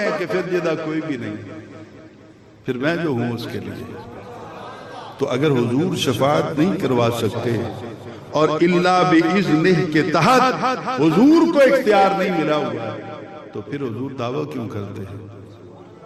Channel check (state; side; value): identical; both; correlation 1.00